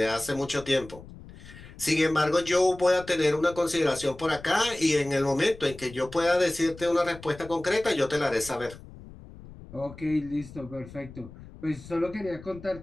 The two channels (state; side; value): noise; left; rumble, 17 dB below the sound